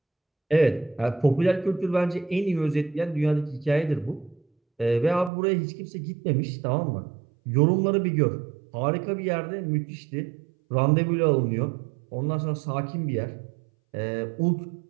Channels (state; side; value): drops out; left; at 5.3 s